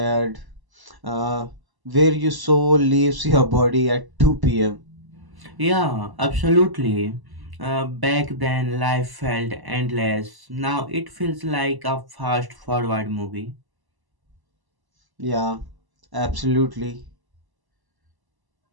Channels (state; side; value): late; left; 1.0 ms